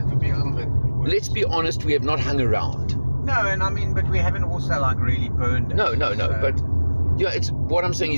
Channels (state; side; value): inverted; both; correlation -0.99